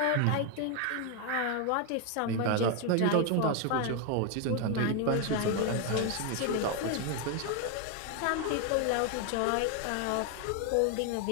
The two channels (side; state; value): both; different; correlation 0.01